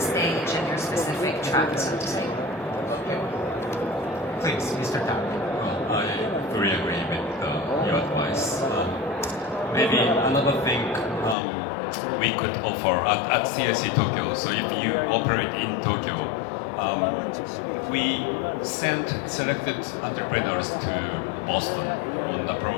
stage and your specific track, so to say. Please, Mr. Tan. I fully agree with your advice. Maybe another thing we could offer at CIC Tokyo. So if you operate in Tokyo, we sent selected entrepreneurs to Boston on a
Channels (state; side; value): drops out; right; at 11.4 s